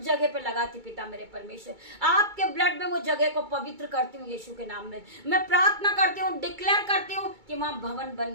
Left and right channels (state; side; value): late; left; 2.2 ms